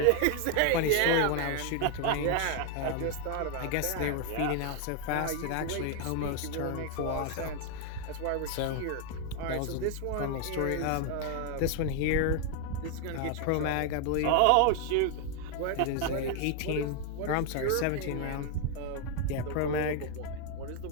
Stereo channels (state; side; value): different; both; correlation 0.00